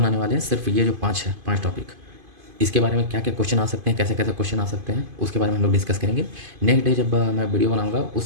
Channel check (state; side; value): late; left; 2.5 ms